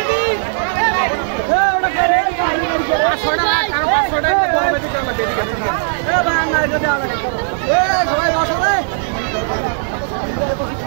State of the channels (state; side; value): silent; left; digital silence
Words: সবাই বসো রে।